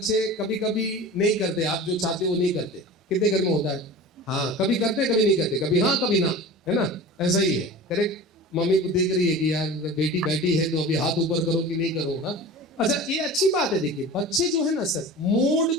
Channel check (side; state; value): both; normal; correlation 0.35